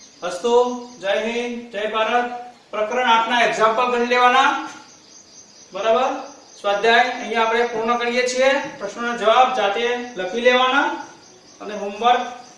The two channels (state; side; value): identical; both; correlation 1.00